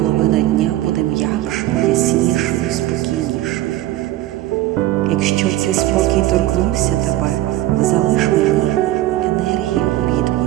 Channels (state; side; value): quieter; left; 15.2 dB